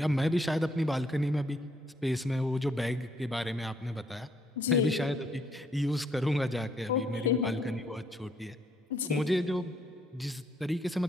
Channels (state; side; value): normal; both; correlation 0.69